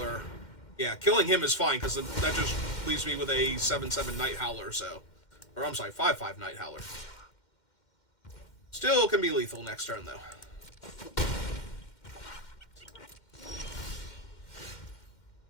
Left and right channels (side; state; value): right; late; 2.1 ms